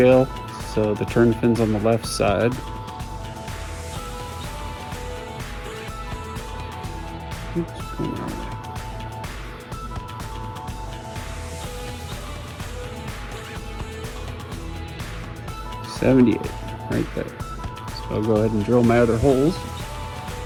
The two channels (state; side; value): identical; both; correlation 1.00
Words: so the turn fin's on the left side. Oops, going the wrong way. $78, right there. So I'll go ahead and drill my other holes.